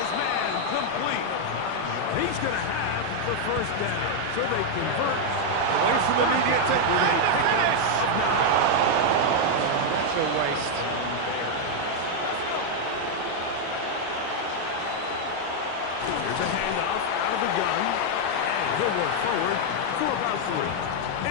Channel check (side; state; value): both; different; correlation 0.00